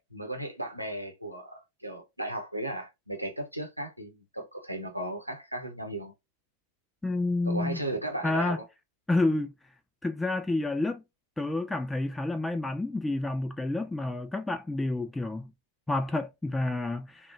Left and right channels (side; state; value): both; normal; correlation 0.67